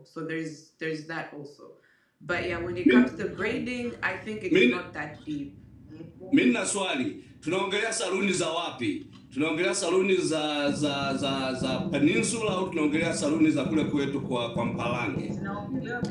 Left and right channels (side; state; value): both; identical; correlation 1.00